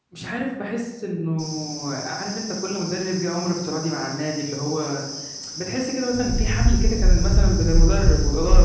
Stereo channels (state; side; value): identical; both; correlation 1.00